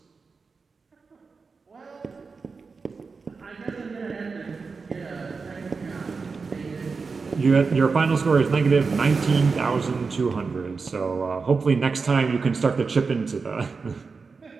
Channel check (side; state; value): left; quieter; 4.7 dB